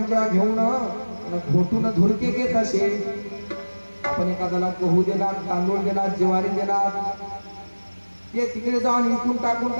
घेऊन घोटून धुरके घेत असे. आपण एखाद्याला गहू दिला, तांदूळ दिला, ज्वारी दिला, ते तिकडे जाऊन इकून टाकून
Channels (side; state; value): both; inverted; correlation -1.00